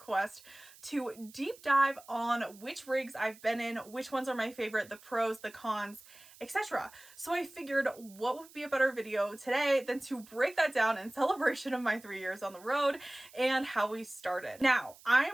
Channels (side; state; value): right; noise; hiss, 22 dB below the sound